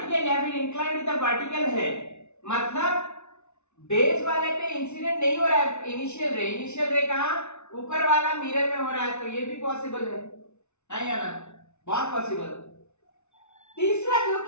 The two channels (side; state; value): right; late; 0.82 ms